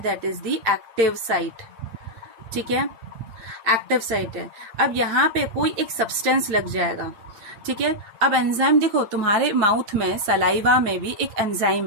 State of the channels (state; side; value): late; left; 8.7 ms